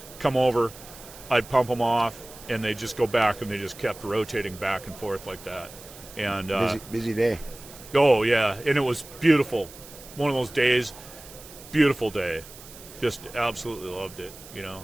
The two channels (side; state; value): right; noise; hiss, 18 dB below the sound